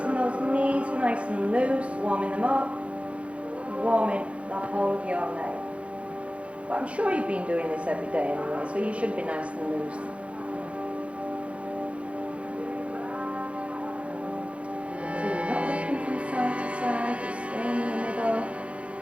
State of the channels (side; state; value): left; late; 0.062 ms